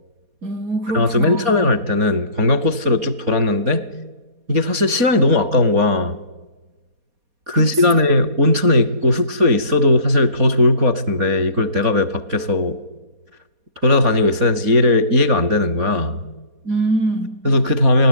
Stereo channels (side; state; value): left; late; 4.2 ms